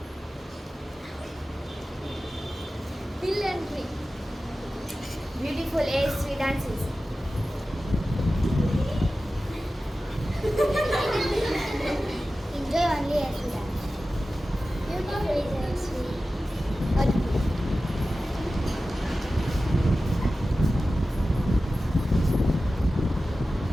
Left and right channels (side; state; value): both; normal; correlation 0.95